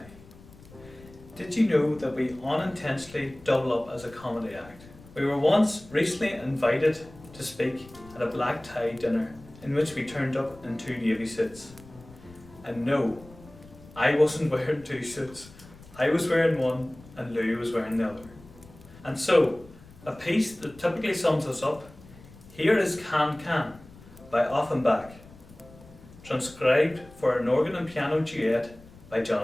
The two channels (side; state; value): left; noise; rumble, 21 dB below the sound